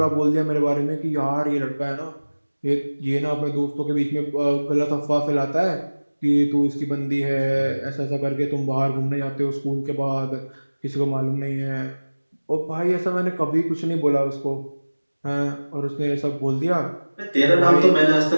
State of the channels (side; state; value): both; inverted; correlation -1.00